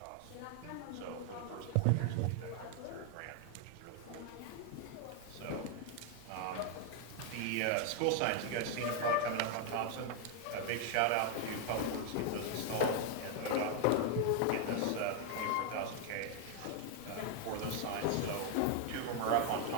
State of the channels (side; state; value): both; different; correlation 0.00